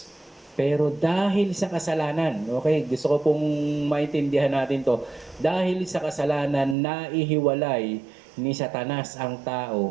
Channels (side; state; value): left; drops out; at 6.8 s